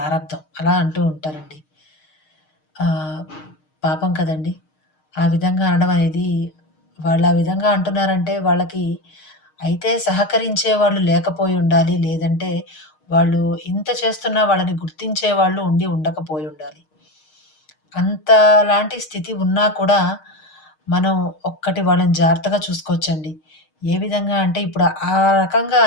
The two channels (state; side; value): late; right; 6.5 ms